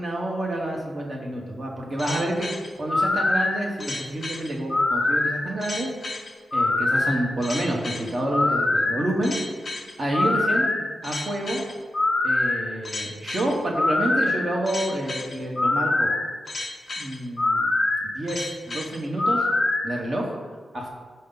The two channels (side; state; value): both; normal; correlation 0.90